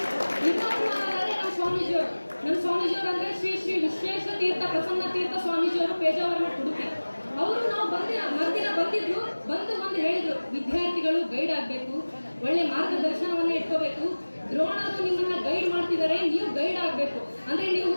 ನಮ್ಮ ಸ್ವಾಮೀಜಿಯವರು ಅಂದ್ರೆ ಶ್ರೀ ಶ್ರೀ ವಿಶ್ವೇಶ್ವರ ತೀರ್ಥ ಪ್ರಸನ್ನ ತೀರ್ಥ ಸ್ವಾಮೀಜಿಯವರು ಪೇಜಾವರಣ ಉಡುಪಿ. ಅವರು ನಾವು ಮರ್ದಿನ ಬಂದಿದ್ರು, ಬಂದು ಹೇಳಿದ್ರು, ವಿದ್ಯಾರ್ಥಿಗಳು ಗೈಡ್ ಆಗ್ಬೇಕು, ಒಳ್ಳೆ ಮಾರ್ಗದರ್ಶನವನ್ನ ಇಟ್ಕೋಬೇಕು, ದ್ರೋಣರು ನಿಮ್ಮನ್ನ ಗೈಡ್ ಮಾಡ್ತಿದ್ದಾರೆ, ನೀವು ಗೈಡ್ ಆಗ್ಬೇಕು, ಅಂದ್ರೆ ನೀವು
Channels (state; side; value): inverted; both; correlation -1.00